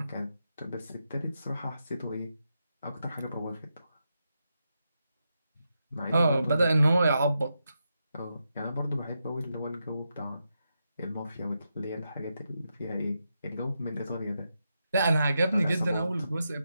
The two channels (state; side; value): inverted; both; correlation -0.85